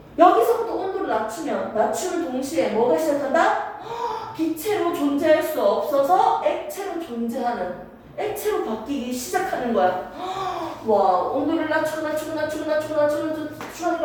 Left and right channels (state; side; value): identical; both; correlation 1.00